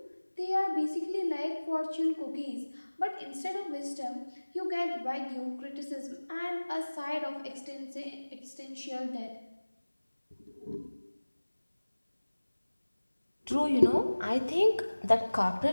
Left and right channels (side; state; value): both; inverted; correlation -1.00